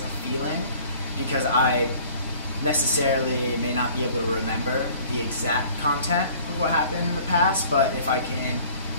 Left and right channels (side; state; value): both; inverted; correlation -0.50